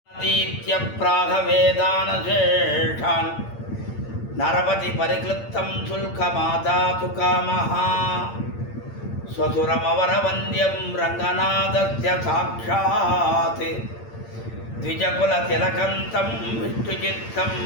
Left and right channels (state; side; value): late; right; 8.8 ms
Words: दीत्य प्रागवेदानशेषान् नरपति परिक्लुप्तं शुल्कमादातु कामः स्वसुरमवरवन्द्यं रङ्गनाथस्य साक्षात् द्विजकुलतिलकन्तं विष्णुचित्तं